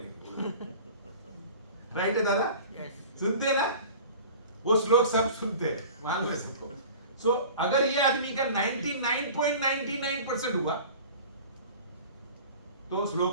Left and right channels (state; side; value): inverted; both; correlation -0.41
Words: राइट है दादा? सुनते हैं ना? वो श्लोक सब सुनते हैं, मालूम है सबको। सो अगर ये आदमी का 99.99% हुआ तो